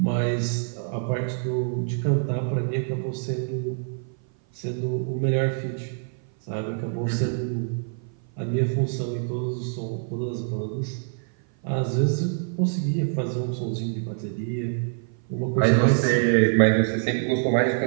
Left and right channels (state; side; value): silent; left; 56 dB below the other